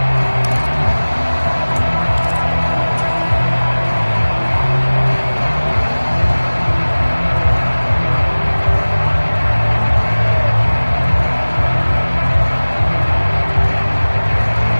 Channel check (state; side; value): inverted; both; correlation -1.00